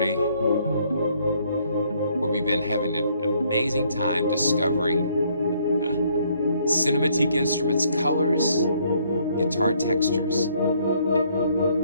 where we've been having an amazing time discovering Cinematique Instruments colors, guitar textures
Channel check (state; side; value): inverted; both; correlation -0.67